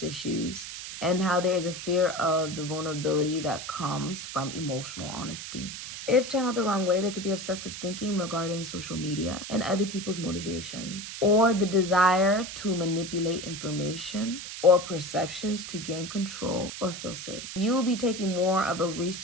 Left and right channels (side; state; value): right; noise; hiss, 9 dB below the sound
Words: issues and how there is a fear of the vulnerability that comes from emotional honesty. If channeled the wrong way, there could be obsessive thinking regarding social media and other people's motivations, or the desire to manipulate information or perceptions to gain control or feel safe. You will be taking more of a